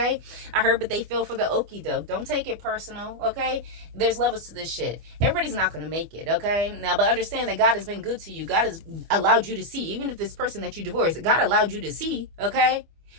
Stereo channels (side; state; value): left; late; 25 ms